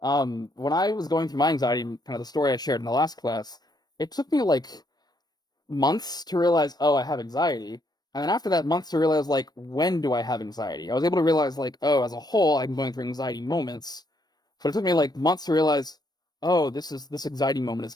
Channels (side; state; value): right; late; 0.19 ms